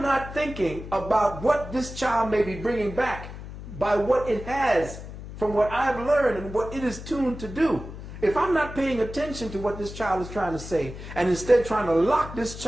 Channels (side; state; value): left; noise; hum, 12 dB below the sound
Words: not thinking about what this child may be bringing back by what it has from what I've learned and what it is tuned to do, if I'm not paying attention to what this child is trying to say and instead trying to lock this